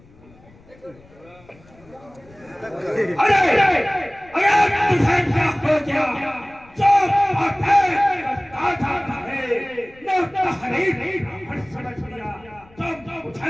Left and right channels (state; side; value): noise; left; rumble, 26 dB below the sound